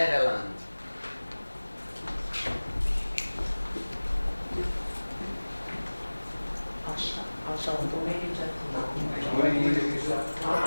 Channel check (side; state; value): both; inverted; correlation -1.00